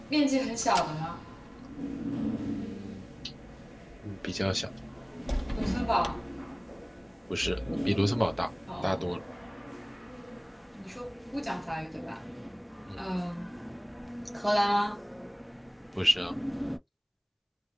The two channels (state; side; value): identical; both; correlation 1.00